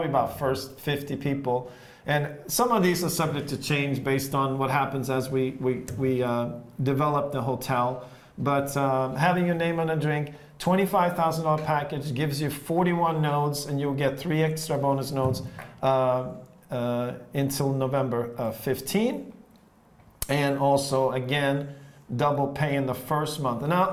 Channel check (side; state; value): both; identical; correlation 1.00